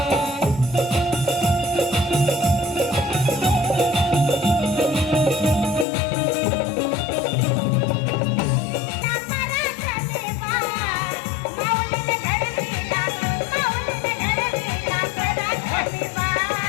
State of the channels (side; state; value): right; drops out; at 5.9 s